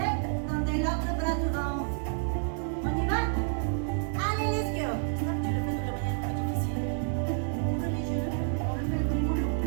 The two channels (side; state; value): left; silent; 58 dB below the other